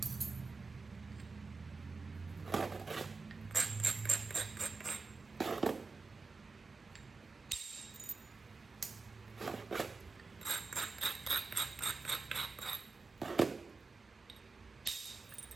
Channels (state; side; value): quieter; left; 4.2 dB